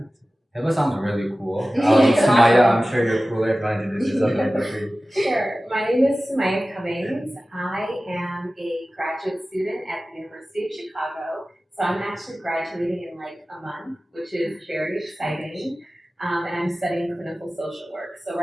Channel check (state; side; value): normal; both; correlation 0.96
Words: Hiba sounds really cool. Sumaiyah, I'm sure you're cooler if I introduce yourself really quickly. Sure. My name is Sumaiyah Cummings. I am a graduate student at the University of Chicago. So I'm actually graduating in like a month, which is very exciting. And I'm studying clinical social work. So